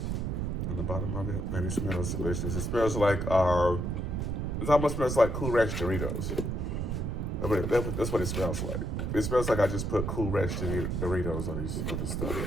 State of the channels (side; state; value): right; noise; rumble, 1 dB below the sound